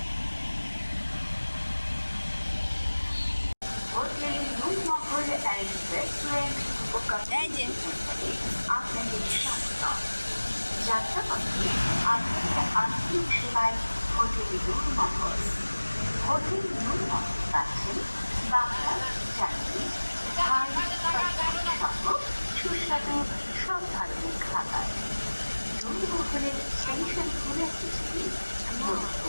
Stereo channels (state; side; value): inverted; both; correlation -1.00